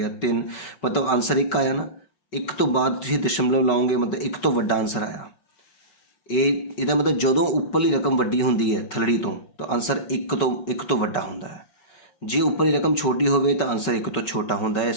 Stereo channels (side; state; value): right; late; 5.3 ms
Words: 3, ਮਤਲਬ ਆਨਸਰ 1 ਆਇਆ ਨਾ। 1 ਤੋਂ ਬਾਅਦ ਤੁਸੀਂ ਦਸ਼ਮਲਵ ਲਾਓਗੇ, ਮਤਲਬ 1 ਤੋਂ ਵੱਡਾ ਆਨਸਰ ਆਇਆ। ਇਹਦਾ ਮਤਲਬ ਜਦੋਂ ਉੱਪਰਲੀ ਰਕਮ ਵੱਡੀ ਹੁੰਦੀ ਹੈ ਥਲੜੀ ਤੋਂ, ਤਾਂ ਆਨਸਰ 1 ਤੋਂ ਵੱਡਾ ਹੁੰਦਾ ਹੈ। ਜੇ ਉੱਪਰਲੀ ਰਕਮ ਛੋਟੀ ਹੋਵੇ ਤਾਂ ਆਨਸਰ 1 ਤੋਂ ਛੋਟਾ ਹੁੰਦਾ ਹੈ।